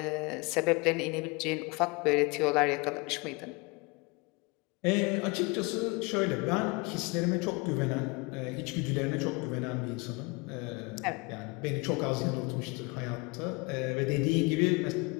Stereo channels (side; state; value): right; quieter; 27.0 dB